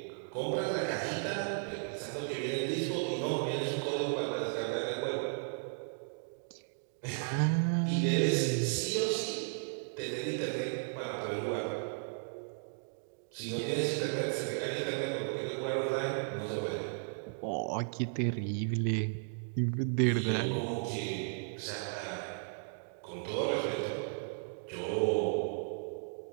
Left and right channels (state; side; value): silent; left; digital silence